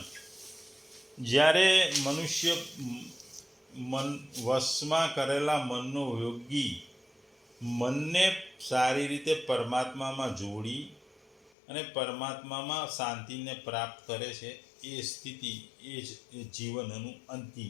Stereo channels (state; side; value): drops out; right; at 11.5 s